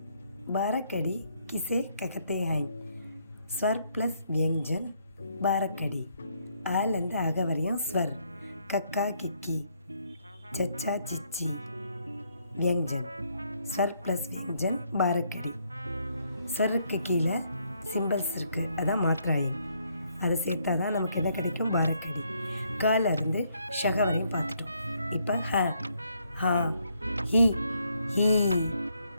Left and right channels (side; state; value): both; inverted; correlation -0.72